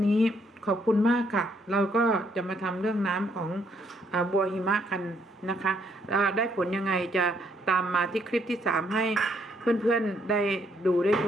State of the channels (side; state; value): both; normal; correlation 0.71